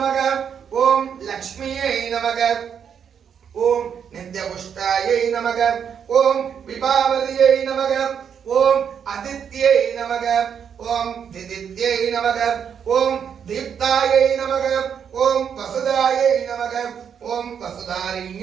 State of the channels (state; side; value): quieter; left; 7.7 dB